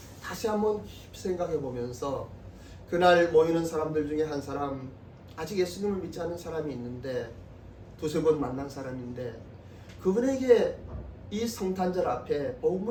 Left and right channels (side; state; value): both; identical; correlation 1.00